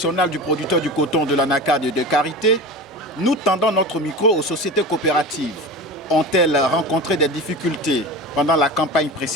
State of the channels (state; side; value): normal; both; correlation 0.31